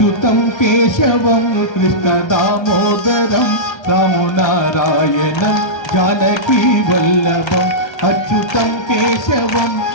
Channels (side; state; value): right; late; 1.3 ms